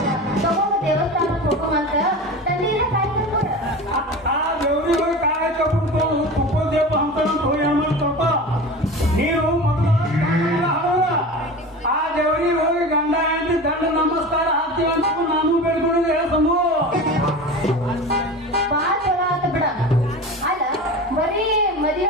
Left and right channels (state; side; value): normal; both; correlation 0.32